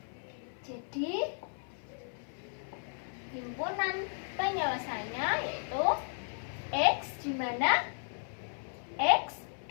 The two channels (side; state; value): right; silent; 55 dB below the other